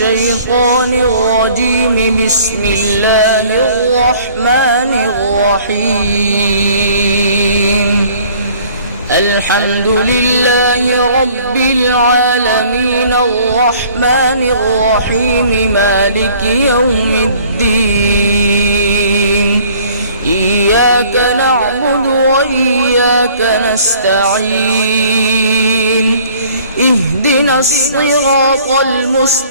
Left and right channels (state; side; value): inverted; both; correlation -0.54